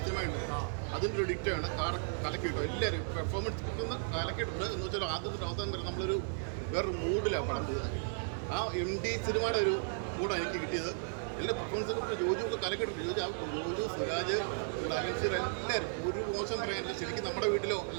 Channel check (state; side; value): silent; left; digital silence